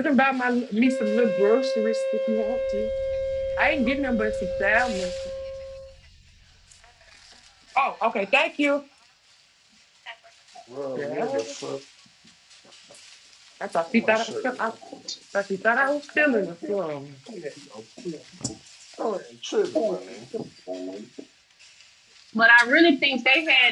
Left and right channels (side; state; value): both; identical; correlation 1.00